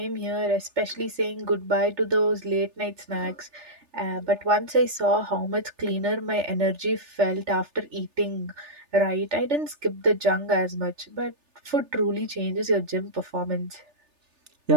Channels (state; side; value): late; left; 3.4 ms